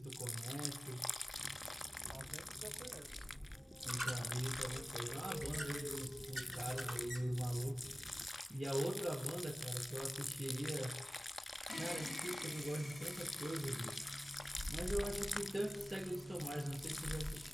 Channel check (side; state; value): both; normal; correlation 0.96